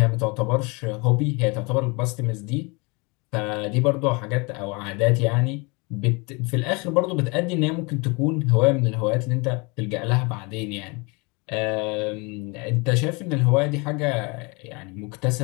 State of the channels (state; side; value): quieter; right; 28.9 dB